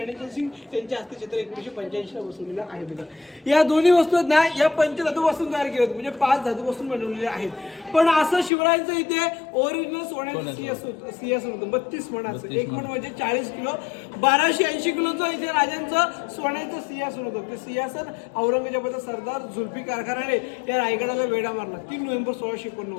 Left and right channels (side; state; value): right; drops out; at 8.5 s